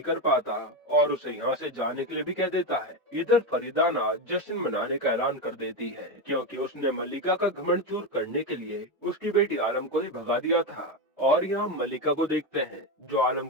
कर पाता और उसे यहाँ से जाने के लिए भी कह देता है। इधर फरीदाना जश्न मनाने का ऐलान कर देती है क्योंकि उसने मलिका का घमंड चूर करने के लिए उसकी बेटी आलम को ही भगा दिया था। और यहाँ मलिका को देखते हैं जो आलम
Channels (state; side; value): normal; both; correlation 0.13